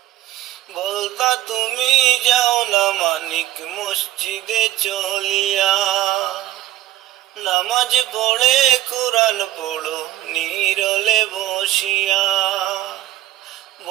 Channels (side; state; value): left; quieter; 14.3 dB